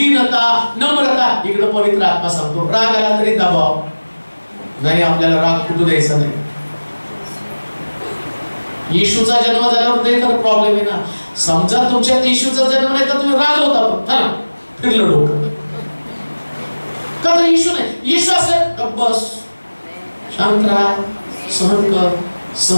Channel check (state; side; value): inverted; both; correlation -1.00